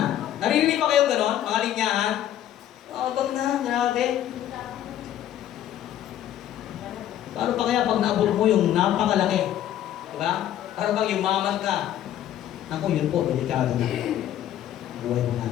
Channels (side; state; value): right; quieter; 11.7 dB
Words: Naririnig pa kayong gano'n, mga linyahan? Yabang na, grabe. Paano pa kaya pag naabot mo yung napakalaki? Diba? Para bang yumaman ka? Naku, yun po, delikado na. Buhay mo